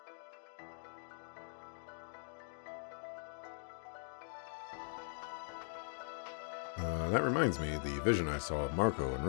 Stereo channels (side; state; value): right; silent; digital silence